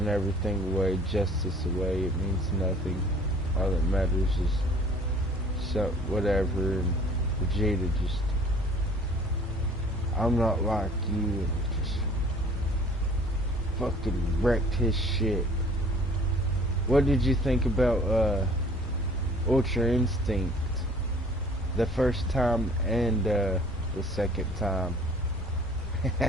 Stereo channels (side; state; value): both; normal; correlation 0.52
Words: everything away, justice away, it means nothing. All that matters is so whatever, and Vegeta just, I'm not like you, and just fucking wrecked his shit. What did you think about Ultra Instinct? The first time and the second time.